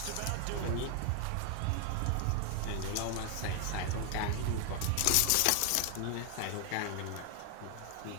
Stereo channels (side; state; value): both; different; correlation 0.00